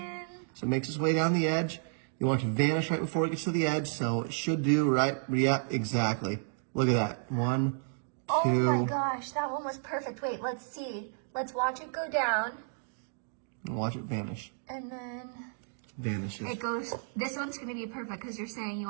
So it makes its way down the edge. You want it to vanish right before it gets to the edge, so it should do, right? Yep, exactly. Look at that. 1, 2. Oh my gosh, that one was perfect. Wait, let's see. Let's watch it go down. And watch it vanish. And then Vanishes. it goes, this one's going to be perfect because you're saying you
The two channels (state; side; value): silent; left; digital silence